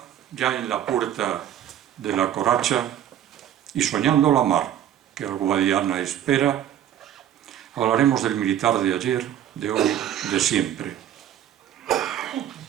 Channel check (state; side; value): quieter; left; 10.8 dB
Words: en la puerta de la coracha y soñando la mar que al Guadiana espera, hablaremos del militar de ayer, de hoy, de siempre.